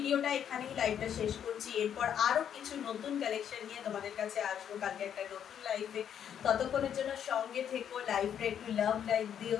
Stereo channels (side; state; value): right; quieter; 9.0 dB